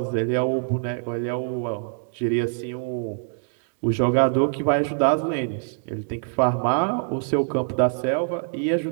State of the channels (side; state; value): left; silent; 62 dB below the other